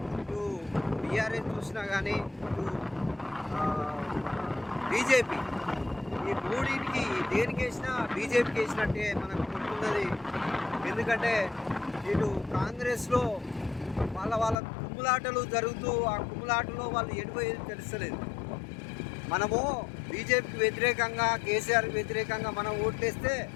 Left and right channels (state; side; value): drops out; right; at 14.6 s